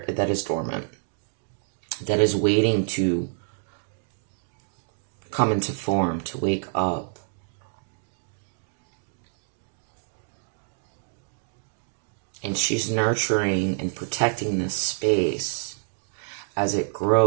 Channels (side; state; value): left; silent; digital silence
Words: dormant, that is waiting to come into form, to wake up. And she's nurturing and protecting this space as it